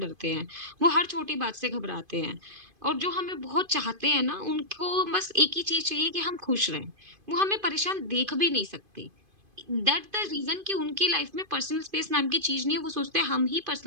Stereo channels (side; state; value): left; late; 2.5 ms